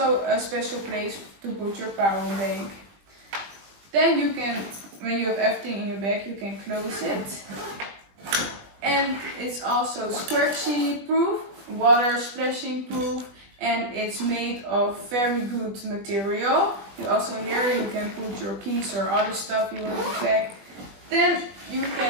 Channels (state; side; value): late; left; 21 ms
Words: a special place to put your power bank. Then you can, when you have everything in your bag, you can close it. And it's also scratchy proof, water splashing proof, and it's made of very good material. You also here you can put your keys or other stuff you want to pack. Then you